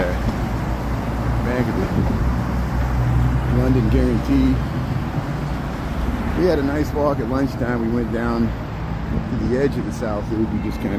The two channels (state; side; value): identical; both; correlation 1.00